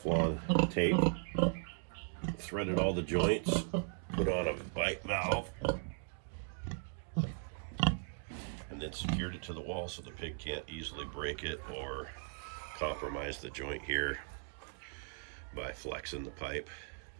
tape, threaded all the joints, put on a bite valve, and then secured it to the wall so the pig can't easily break it or compromise the joint here by flexing the pipe.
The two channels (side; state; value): left; silent; 53 dB below the other